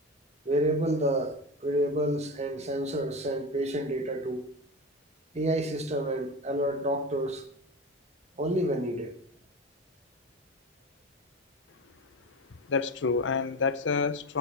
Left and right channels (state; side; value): normal; both; correlation 0.25